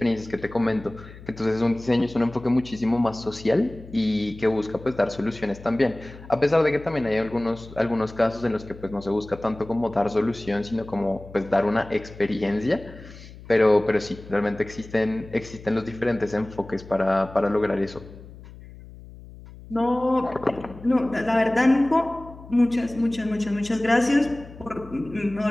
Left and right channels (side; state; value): left; noise; hum, 17 dB below the sound